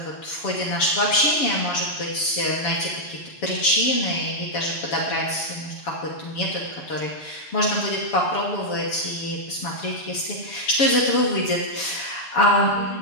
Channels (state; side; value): late; right; 7.1 ms